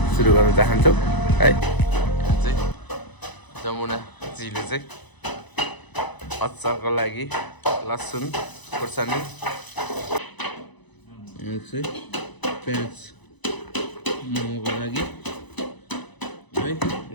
सुरु गर्न चाहन्छौँ है। जमुनाजीले चाहिँ अचारको लागि लसुन खुर्सानी, यहाँ चाहिँ प्याज मोमोको लागि है,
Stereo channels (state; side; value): late; right; 1.0 ms